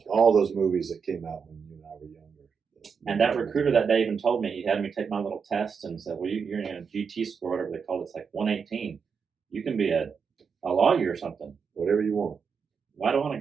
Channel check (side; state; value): left; quieter; 6.1 dB